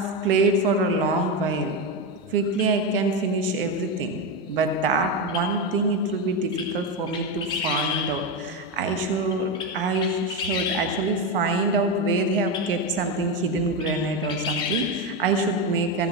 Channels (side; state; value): both; normal; correlation 0.12